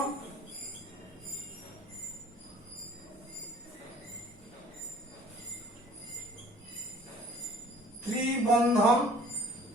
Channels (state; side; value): normal; both; correlation 0.52